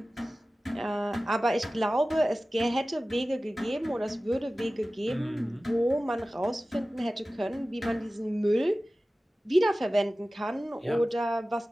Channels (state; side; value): normal; both; correlation 0.96